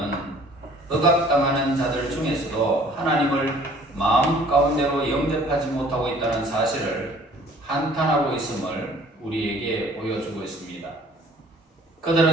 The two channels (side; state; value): both; normal; correlation 0.54